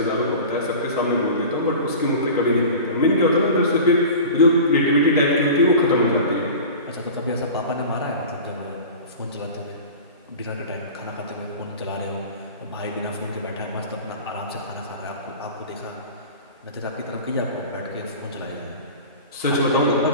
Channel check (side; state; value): both; inverted; correlation -0.36